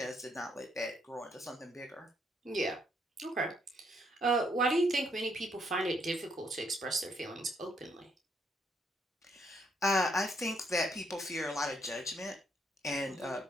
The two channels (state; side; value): normal; both; correlation 0.73